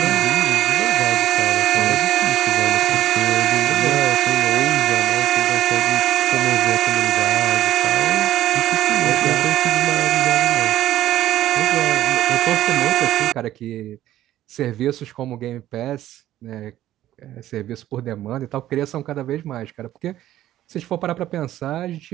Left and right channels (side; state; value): left; quieter; 13.4 dB